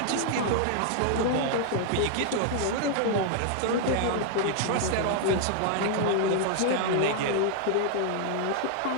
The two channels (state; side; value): different; both; correlation 0.00